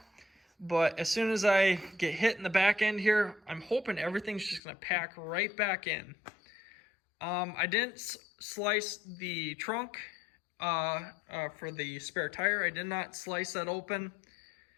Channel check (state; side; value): drops out; right; at 4.6 s